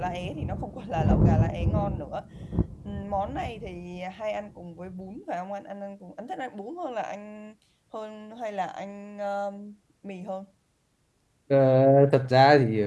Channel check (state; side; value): identical; both; correlation 1.00